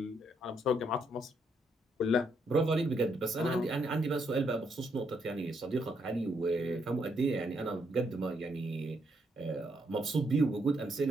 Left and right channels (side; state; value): both; normal; correlation 0.75